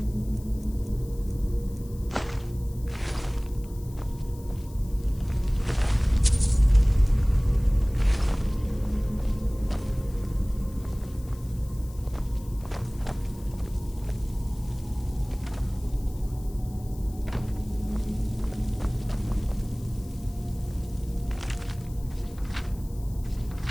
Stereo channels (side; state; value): left; noise; hiss, 23 dB below the sound